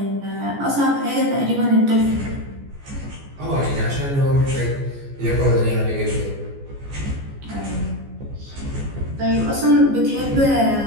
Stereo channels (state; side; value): late; left; 14 ms